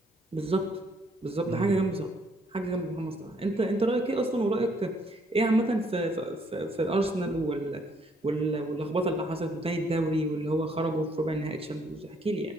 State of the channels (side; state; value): both; normal; correlation 0.68